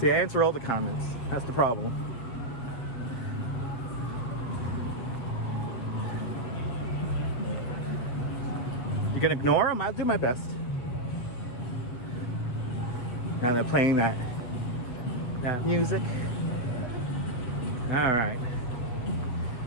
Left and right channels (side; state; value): right; late; 8.0 ms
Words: I answer all the comments. That's the problem. You gonna ignore them? I'll do my best. Now they're playing that music. All right.